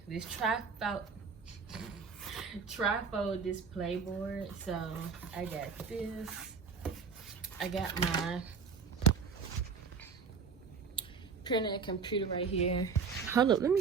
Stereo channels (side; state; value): left; quieter; 5.6 dB